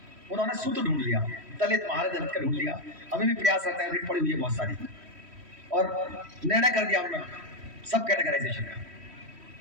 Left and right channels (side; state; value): left; late; 3.1 ms